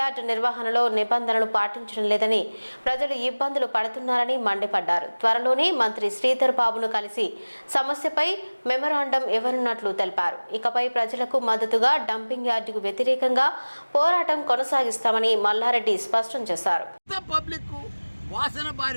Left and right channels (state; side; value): inverted; both; correlation -1.00